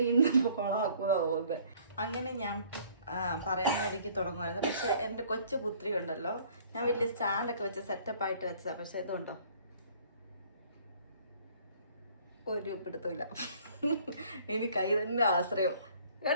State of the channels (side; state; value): both; inverted; correlation -0.56